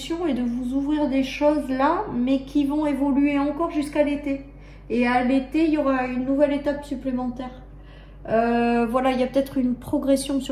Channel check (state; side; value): identical; both; correlation 1.00